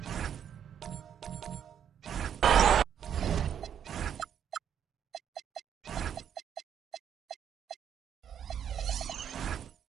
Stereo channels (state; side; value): quieter; left; 8.7 dB